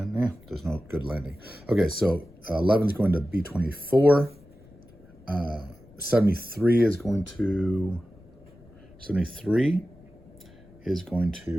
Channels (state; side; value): noise; left; rumble, 25 dB below the sound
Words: there's no good landing. Okay, so 11 is going to B24. 73 is going to